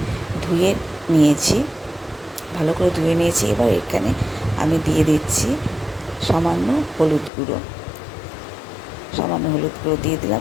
ধুয়ে নিয়েছি, ভালো করে ধুয়ে নিয়েছি। এবার এখানে আমি দিয়ে দিচ্ছি সামান্য হলুদ গুঁড়ো দিয়ে দিলাম।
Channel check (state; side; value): drops out; right; at 7.3 s